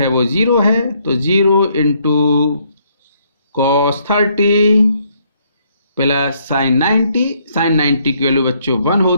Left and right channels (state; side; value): inverted; both; correlation -0.70